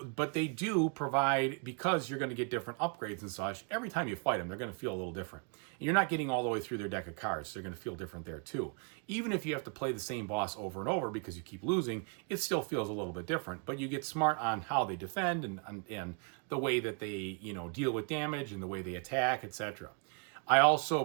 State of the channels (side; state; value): left; quieter; 38.8 dB